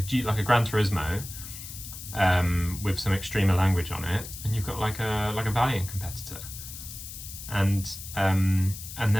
like a Gran Turismo with some Extrema language on it, and you've got like a Valiant competitor. And then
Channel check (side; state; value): left; noise; hiss, 11 dB below the sound